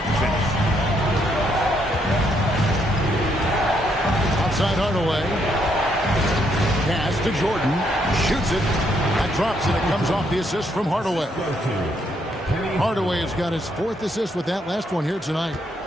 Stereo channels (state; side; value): normal; both; correlation 0.74